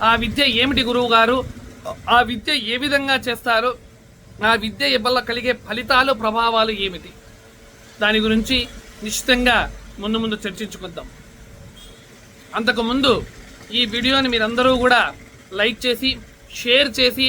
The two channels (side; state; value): both; identical; correlation 1.00